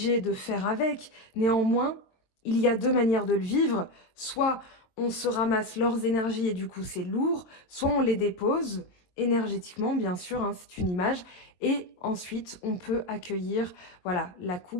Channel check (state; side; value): late; right; 23 ms